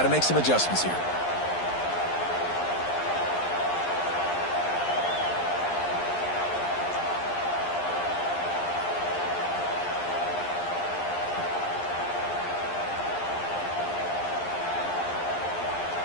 to make some adjustments here.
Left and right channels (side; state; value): right; late; 11 ms